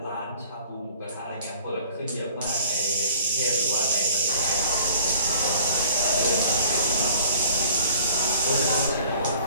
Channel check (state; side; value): inverted; both; correlation -0.51